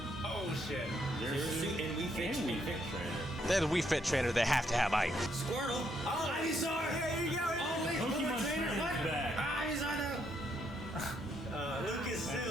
Oh, shit. Zero suit and we fit trainer. They're the Wii Fit trainer, they have to have ice. Squirtle. Oh, Ivysaur. Here you go. Oh, wait. Pokemon trainer back. Ivysaur, Lucas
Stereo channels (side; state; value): both; normal; correlation 0.74